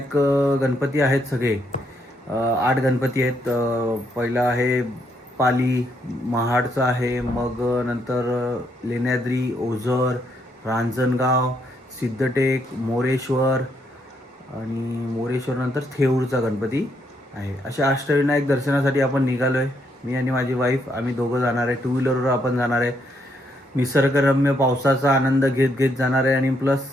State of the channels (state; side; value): normal; both; correlation 0.75